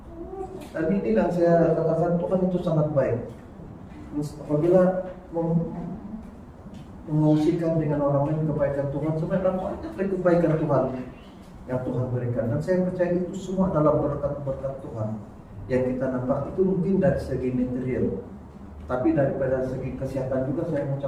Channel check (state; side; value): identical; both; correlation 1.00